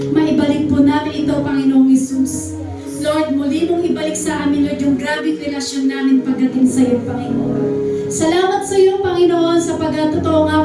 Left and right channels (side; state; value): both; identical; correlation 1.00